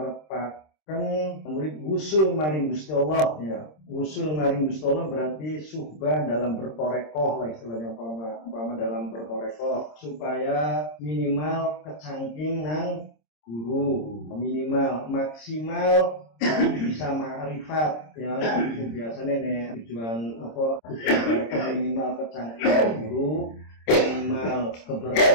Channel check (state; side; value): late; right; 26 ms